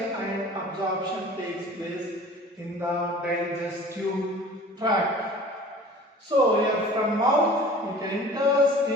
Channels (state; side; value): normal; both; correlation 0.44